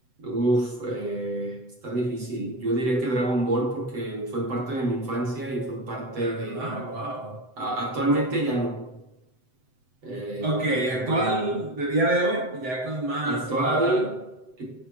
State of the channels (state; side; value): late; left; 7.9 ms